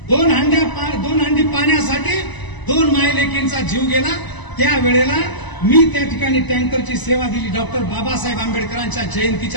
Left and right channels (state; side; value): late; right; 1.0 ms